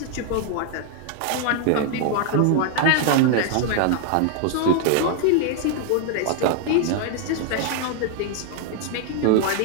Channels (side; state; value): both; different; correlation 0.00